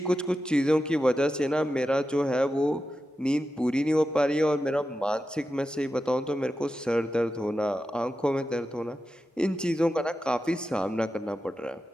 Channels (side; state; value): both; normal; correlation 0.91